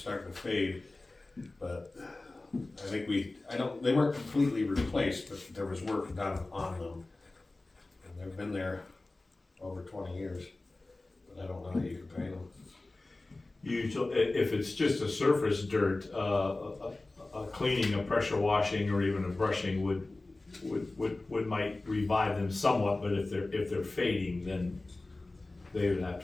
to fade, but I think they weren't completely replaced, but there was work done on them. And they've been there over 20 years, but I don't know how you can paint them. Usually, if it's just a surface dirt, a cleaning, a pressure washing, or even a brushing would might revive them somewhat, but if they're fading, then they would have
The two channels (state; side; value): quieter; right; 3.1 dB